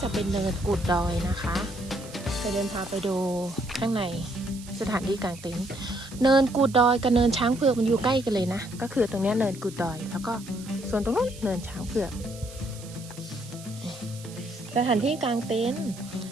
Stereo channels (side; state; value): right; noise; hiss, 18 dB below the sound